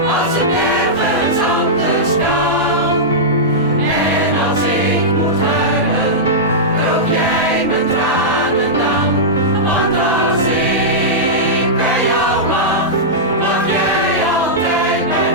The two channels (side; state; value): both; normal; correlation -0.12